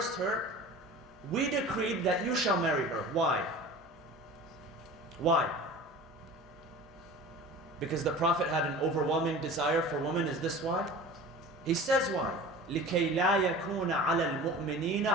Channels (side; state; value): both; normal; correlation 0.38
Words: her, we decreed that you shall marry her. Why? Why? Because the Prophet had an overwhelming desire for women. Is this why? He says why? لِكَيْ لَا يَكُونَ عَلَى الْمُؤْمِنِينَ